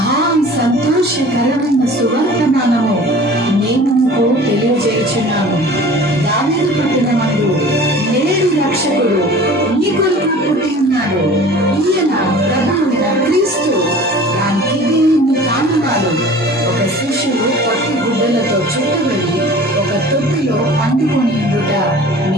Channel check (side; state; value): both; normal; correlation 0.44